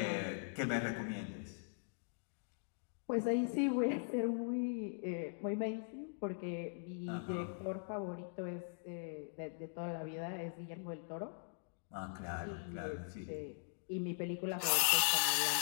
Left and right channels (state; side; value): silent; right; digital silence